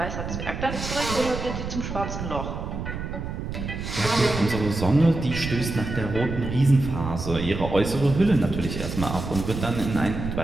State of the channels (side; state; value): right; noise; rumble, 6 dB below the sound